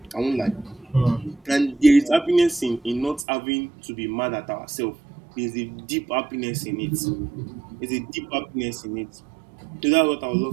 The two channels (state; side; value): drops out; left; at 3.2 s